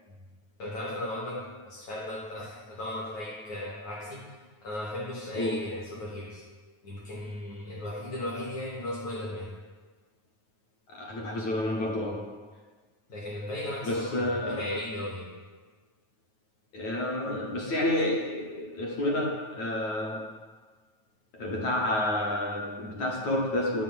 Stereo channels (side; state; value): right; late; 9.4 ms